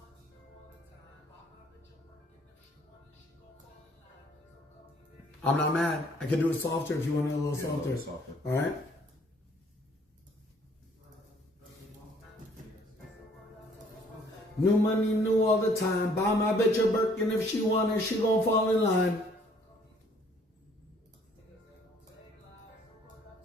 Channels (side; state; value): both; normal; correlation 0.61